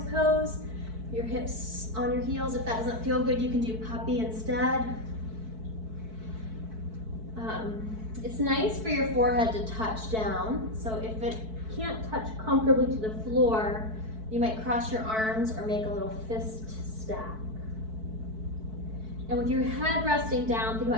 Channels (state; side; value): late; left; 4.6 ms